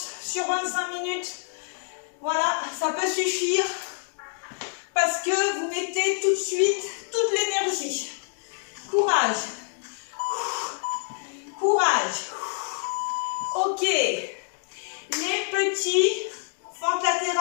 sur 25 minutes. Voilà, ça peut suffire parce que vous mettez tout de suite toute l'énergie. Courage. Courage. Ok. Les petits, fente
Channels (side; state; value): right; silent; digital silence